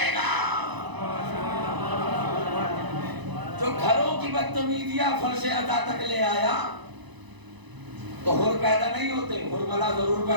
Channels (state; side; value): late; left; 1.0 ms